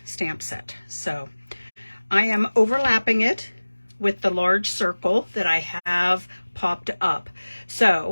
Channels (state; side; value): inverted; both; correlation -1.00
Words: stamp set. So I am overlapping it with the large circle that I have popped up.